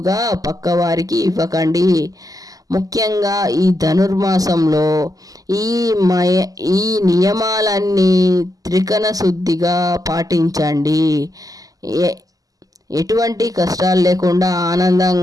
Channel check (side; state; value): left; late; 0.17 ms